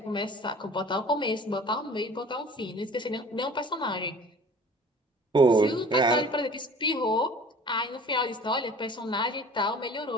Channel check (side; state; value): both; normal; correlation 0.46